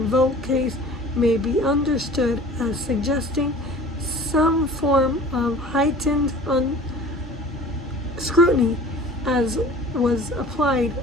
case may be understood as suggesting some form of heightened scrutiny as was applied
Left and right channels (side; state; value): both; normal; correlation 0.43